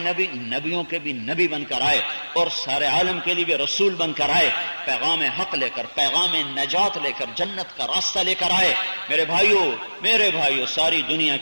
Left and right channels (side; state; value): both; inverted; correlation -1.00